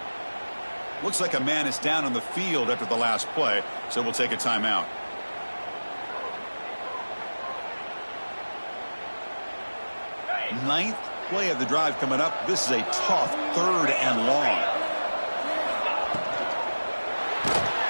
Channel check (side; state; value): both; inverted; correlation -1.00